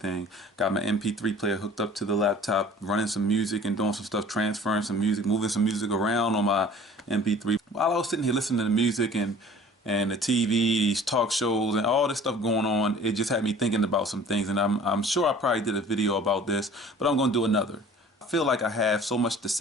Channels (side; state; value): both; normal; correlation 0.47